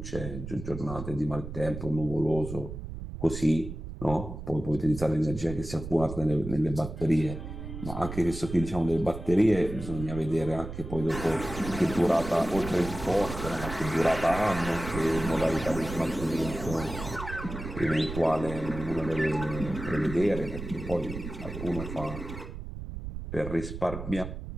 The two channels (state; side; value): noise; right; rumble, 9 dB below the sound